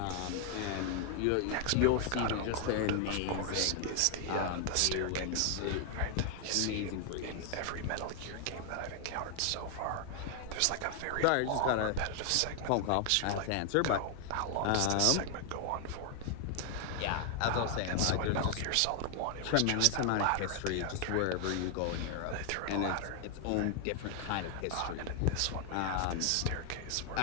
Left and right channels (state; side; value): different; both; correlation 0.00